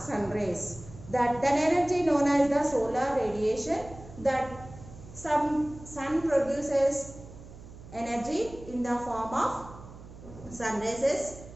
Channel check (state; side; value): noise; right; hum, 17 dB below the sound